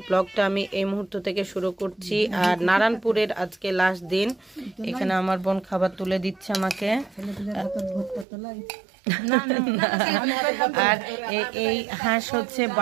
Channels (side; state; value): left; drops out; at 8.2 s